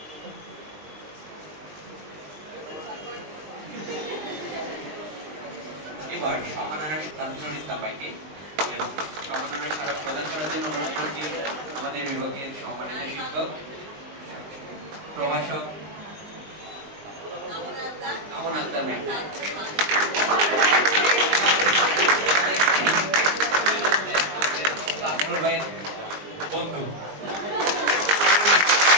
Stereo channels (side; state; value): left; late; 20 ms